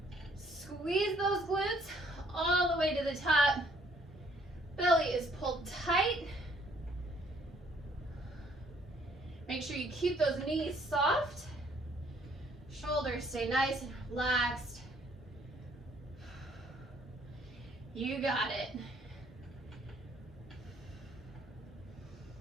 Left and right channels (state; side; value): normal; both; correlation 0.63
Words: Squeeze those glutes all the way to the top. Belly is pulled tight. Make sure you keep those knees soft. Shoulders stay nice and relaxed. You got it.